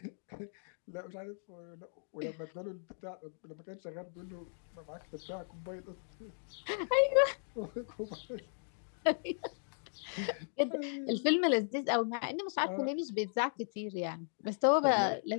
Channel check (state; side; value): silent; right; digital silence